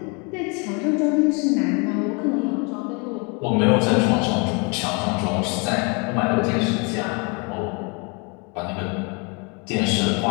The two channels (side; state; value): right; quieter; 32.1 dB